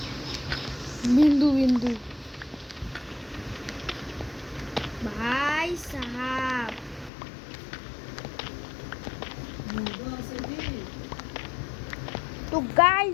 বিন্দু বিন্দু ভাই সাহাব তো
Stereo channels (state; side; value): drops out; right; at 7.1 s